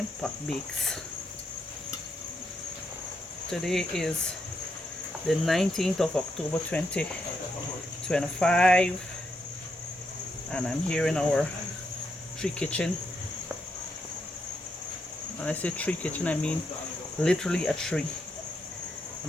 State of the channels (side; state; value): both; normal; correlation 0.80